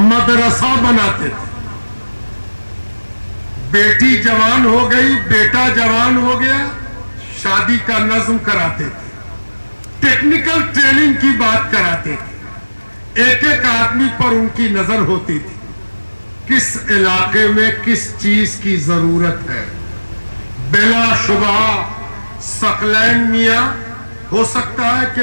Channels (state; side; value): inverted; both; correlation -1.00